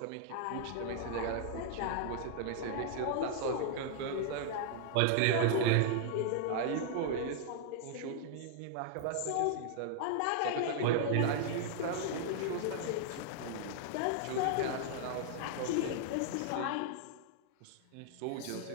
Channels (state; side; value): different; both; correlation -0.01